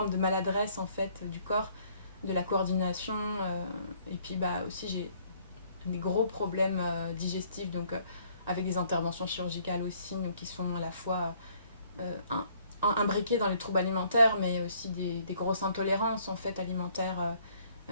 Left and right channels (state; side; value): inverted; both; correlation -0.64